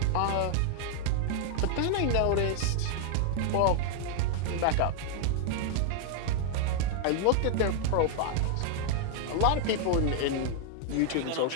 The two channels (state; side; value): different; both; correlation 0.00